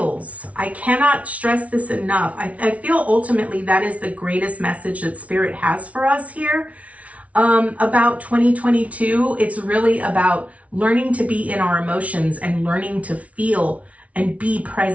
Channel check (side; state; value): left; late; 0.066 ms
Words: I cannot stress this enough. I feel ultimately that is the greatest message that Spirit has for us here about 2022. It's really about learning to be in our emotions and learning to feel and be